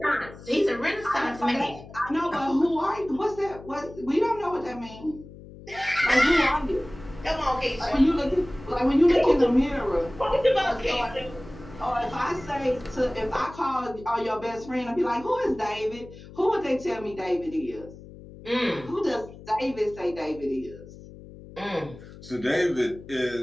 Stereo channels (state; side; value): noise; left; hum, 17 dB below the sound